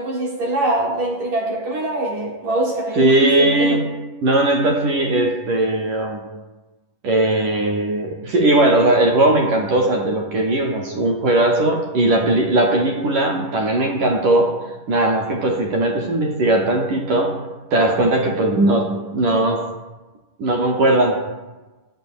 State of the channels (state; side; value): late; left; 11 ms